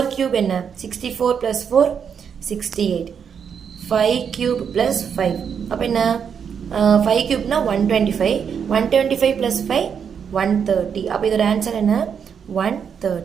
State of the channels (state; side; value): quieter; left; 7.2 dB